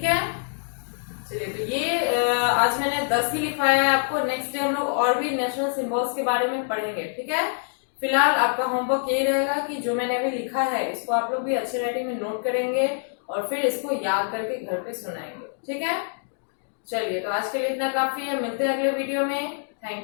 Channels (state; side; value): silent; right; digital silence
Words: है। चलिए तो ये आज मैंने 10 ही लिखवाया है आपको। नेक्स्ट डे हम लोग और भी नेशनल सिंबल्स के बारे में पढ़ेंगे, ठीक है। फिलहाल आपका होमवर्क यही रहेगा कि जो मैंने अभी लिखा है इसको आप लोग भी अच्छे राइटिंग में नोट करेंगे और फिर इसको याद करके घर पे सुनाएंगे, ठीक है। चलिए तो आज के लिए इतना काफी है, मिलते हैं अगले वीडियो में।